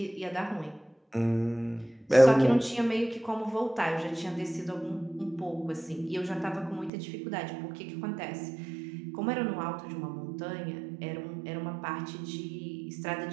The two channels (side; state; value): left; drops out; at 6.9 s